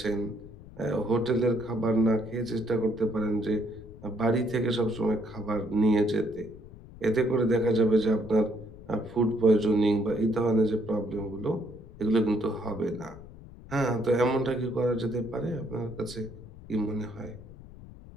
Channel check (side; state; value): left; noise; rumble, 18 dB below the sound